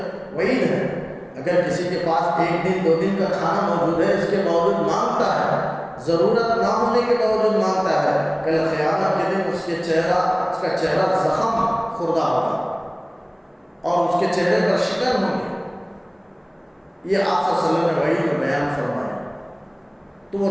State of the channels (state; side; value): identical; both; correlation 1.00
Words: وعید ہے، اگر کسی کے پاس 1 دن 2 دن کا کھانا موجود ہے، اس کے باوجود مانگتا ہے، ضرورت نہ ہونے کے باوجود مانگتا ہے، کل قیامت کے دن اس کا چہرہ زخم خوردہ ہوگا اور اس کے چہرے پر شکن ہوگی۔ یہ آپ صلی اللہ علیہ وسلم نے وحی میں بیان فرمایا۔ تو